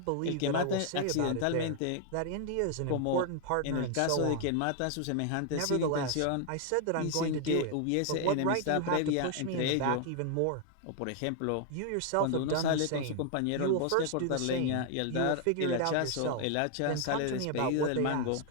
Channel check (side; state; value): both; different; correlation 0.00